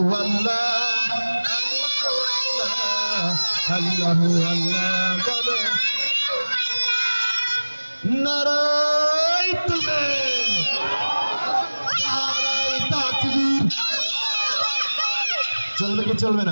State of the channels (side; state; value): both; inverted; correlation -1.00